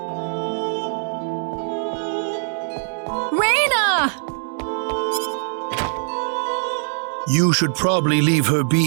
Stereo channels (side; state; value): left; silent; digital silence